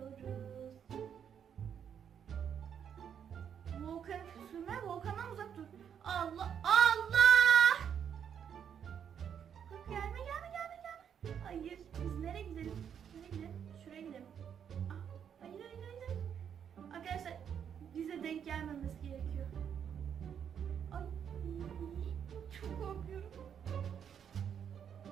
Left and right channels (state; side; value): quieter; left; 8.2 dB